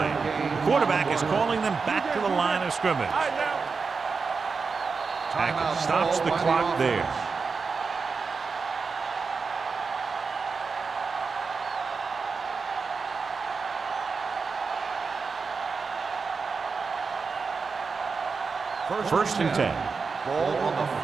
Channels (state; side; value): quieter; left; 4.9 dB